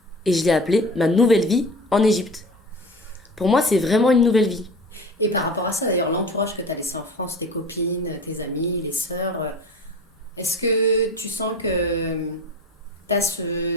et je l'ai appelé Ma nouvelle vie en Égypte. Pour moi, c'est vraiment une nouvelle vie. Et par rapport à ça, d'ailleurs, l'entourage que tu as laissé en France, tes copines, tes amis, les sœurs, est-ce que tu sens que tu as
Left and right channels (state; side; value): normal; both; correlation 0.37